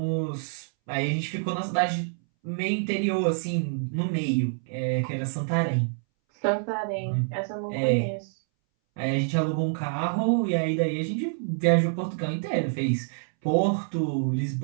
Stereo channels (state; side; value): silent; left; 60 dB below the other